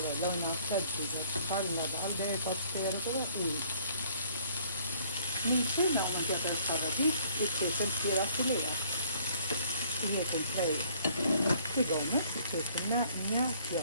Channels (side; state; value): both; inverted; correlation -0.58